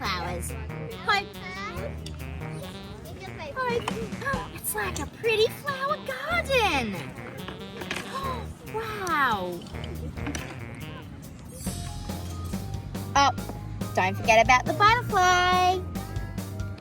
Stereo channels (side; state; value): both; identical; correlation 1.00